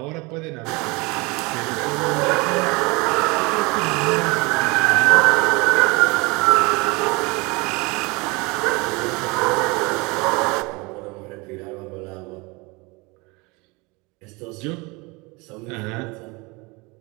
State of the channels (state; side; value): quieter; left; 26.4 dB